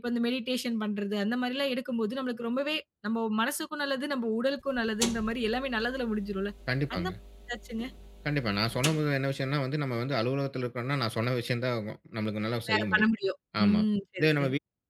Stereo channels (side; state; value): both; identical; correlation 1.00